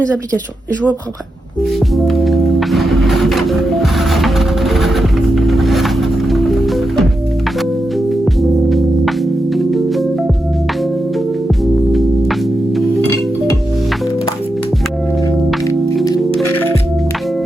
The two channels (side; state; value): both; normal; correlation 0.87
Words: applications. Et je vous reprends après.